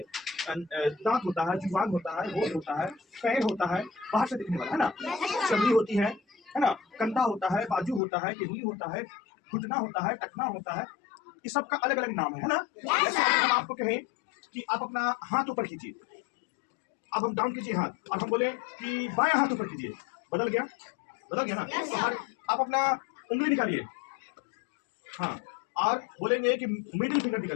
दांत होता है, जुबान होता है, होंठ होता है, पैर होता है, बाहर से दिखने वाला है ना? चमड़ी होती है ना? कंधा होता है, बाजू होता है, टिहनी होता है, घुटना होता है, टखना होता है। इस सब का अलग अलग नाम है ना? जैसे हम आपको कहें कि आप अपना हाथ ऊपर कीजिए, अब हम डाउन कीजिए हाथ और हम बोले कि बायां हाथ ऊपर कीजिए, बदल गया ना? तो आप अपना उंगली निकालिए, हाँ, और बोलेंगे कि मिडिल फिंगर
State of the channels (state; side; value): drops out; right; at 8.0 s